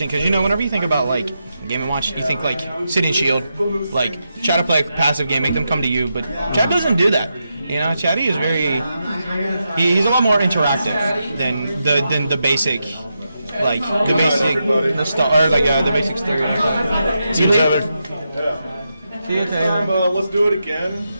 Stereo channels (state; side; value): inverted; both; correlation -0.86